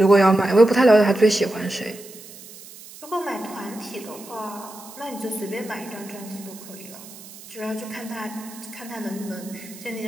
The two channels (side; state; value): right; noise; hiss, 18 dB below the sound